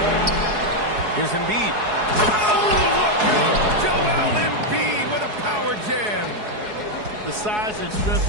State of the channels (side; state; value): left; late; 4.7 ms